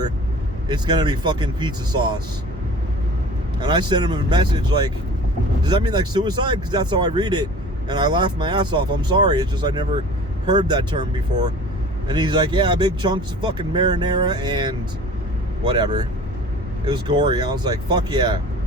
it's going to be fucking pizza sauce. And I sent him a message like, does that mean like suicide? Because that's how I read it. And I laughed my ass off. I'm sorry. It's just I never heard that term before. And he's like, yeah, big chunks of fucking marinara and whatever. It was gory. I was like, fuck yeah.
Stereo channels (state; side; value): normal; both; correlation 0.43